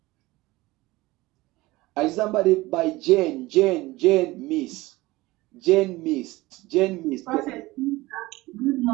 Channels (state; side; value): quieter; left; 19.9 dB